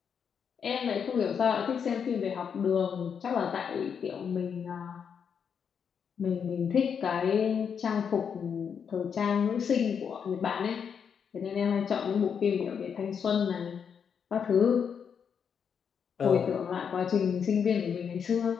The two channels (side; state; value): right; quieter; 7.1 dB